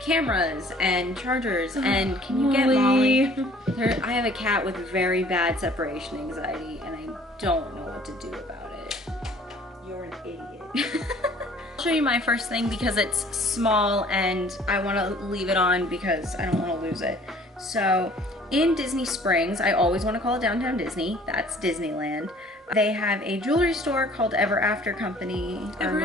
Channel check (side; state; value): both; normal; correlation 0.53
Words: cameras and chargers and can you get Molly? I have a cat with very bad separation anxiety and I don't know what to do about it. You're an idiot. I'll show you my first thing because it's small and I want to leave it on because I don't want to lose it. So in Disney Springs, I always want to call it Downtown Disney, that's Disneyland. They have a jewelry store called Ever After Company or